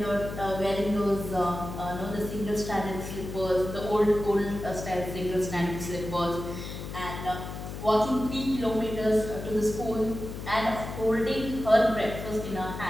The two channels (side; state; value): left; noise; hum, 8 dB below the sound